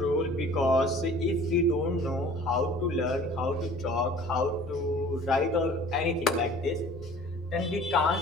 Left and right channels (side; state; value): both; normal; correlation 0.48